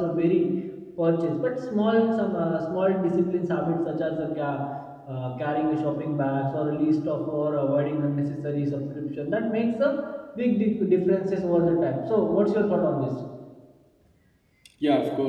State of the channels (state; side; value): identical; both; correlation 1.00